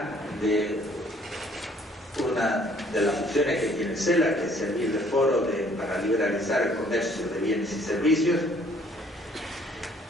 de una de las funciones que tiene CELAC, que es servir de foro para liberalizar el comercio de bienes y servicios,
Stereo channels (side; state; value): both; normal; correlation 0.60